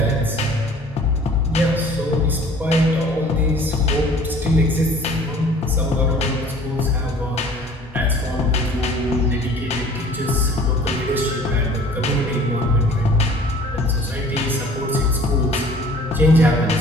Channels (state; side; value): normal; both; correlation 0.50